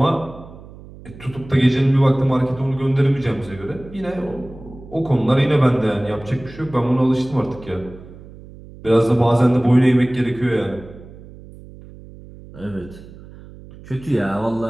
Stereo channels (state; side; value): noise; right; hum, 18 dB below the sound